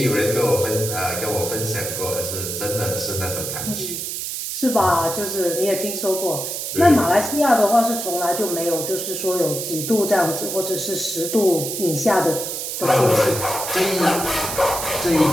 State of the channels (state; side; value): noise; right; hiss, 4 dB below the sound